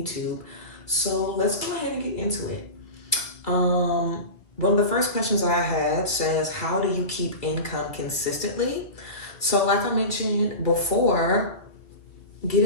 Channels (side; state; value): right; late; 2.0 ms